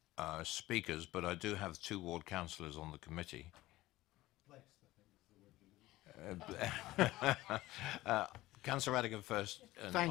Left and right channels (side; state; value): right; quieter; 17.4 dB